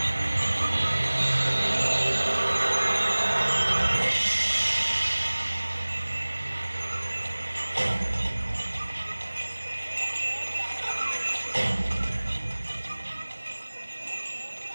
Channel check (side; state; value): both; inverted; correlation -1.00